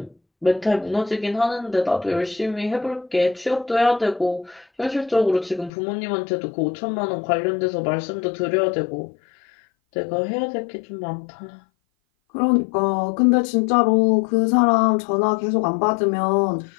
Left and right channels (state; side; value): drops out; right; at 5.7 s